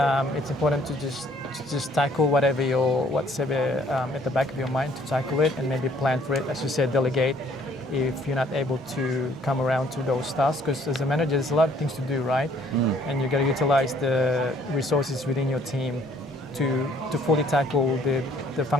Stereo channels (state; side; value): normal; both; correlation 0.61